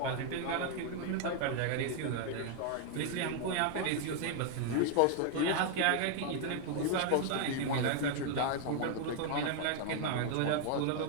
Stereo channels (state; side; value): different; both; correlation 0.00